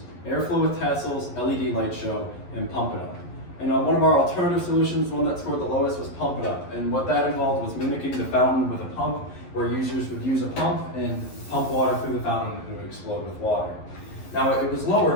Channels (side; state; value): right; late; 11 ms